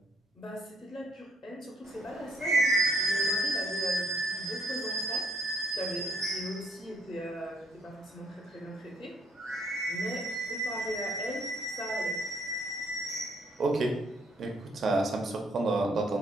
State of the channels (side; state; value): both; normal; correlation 0.66